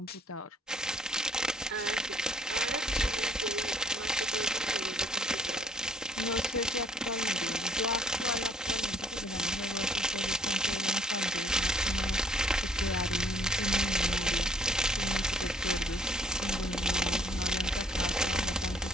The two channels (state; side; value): normal; both; correlation 0.61